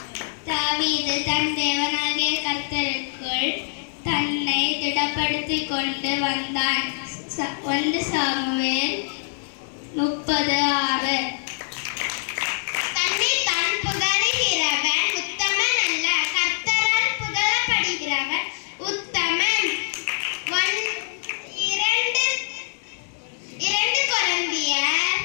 தாவீது தன் தேவனாகிய கர்த்தருக்குள் தன்னை திடப்படுத்திக் கொண்டு வந்தான். 1 சாமுவேல் 30:6. தன்னை தான் புகழுகிறவன் உத்தமன் அல்ல, கர்த்தரால் புகழப்படுகிறவன் உத்தமன். 2 கொரிந்தியர்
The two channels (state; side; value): silent; right; digital silence